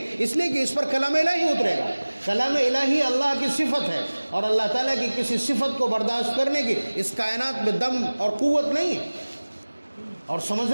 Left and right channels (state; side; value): inverted; both; correlation -1.00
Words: اس لیے کہ اس پر کلام الہی اترے گا۔ کلام الہی اللہ کی صفت ہے، اور اللہ تعالیٰ کی کسی صفت کو برداشت کرنے کی اس کائنات میں دم اور قوت نہیں ہے۔ اور